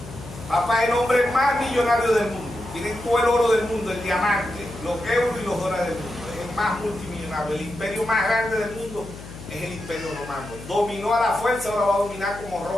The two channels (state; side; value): noise; left; hum, 14 dB below the sound